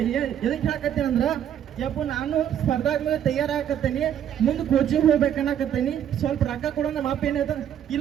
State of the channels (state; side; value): quieter; left; 9.9 dB